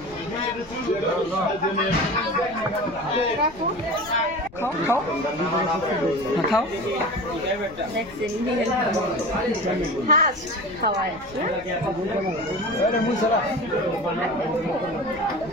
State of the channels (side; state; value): left; noise; rumble, 21 dB below the sound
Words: খাও খাও খাওয়ায়